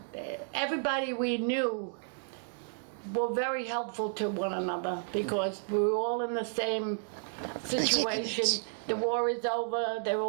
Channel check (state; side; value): silent; left; digital silence